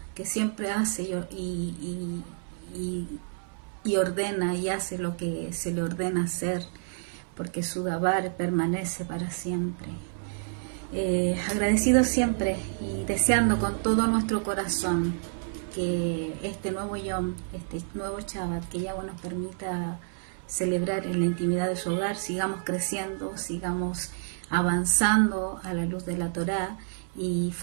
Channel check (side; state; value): left; silent; 59 dB below the other